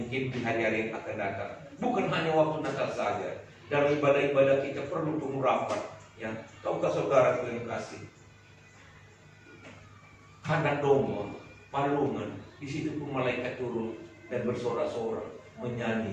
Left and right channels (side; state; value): both; identical; correlation 1.00